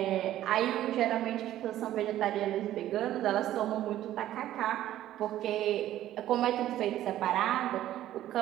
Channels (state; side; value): quieter; left; 13.2 dB